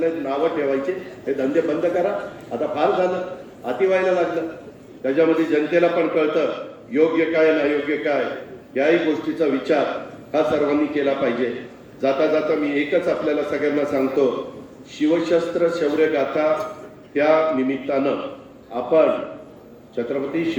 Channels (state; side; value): identical; both; correlation 1.00